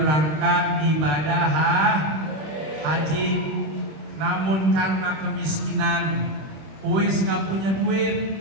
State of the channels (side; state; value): left; late; 26 ms